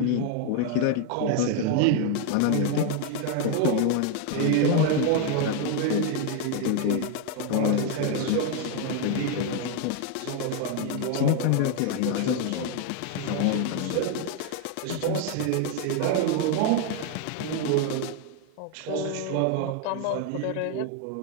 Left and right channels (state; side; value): different; both; correlation 0.01